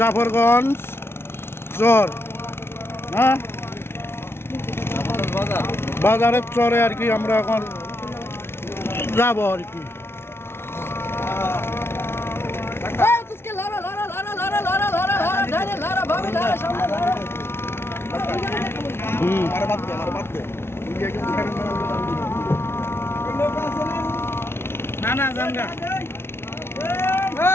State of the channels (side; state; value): right; late; 0.12 ms